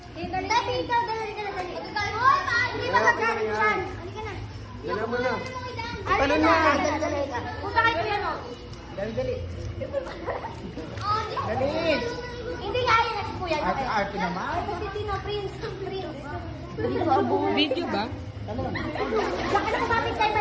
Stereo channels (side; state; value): both; identical; correlation 1.00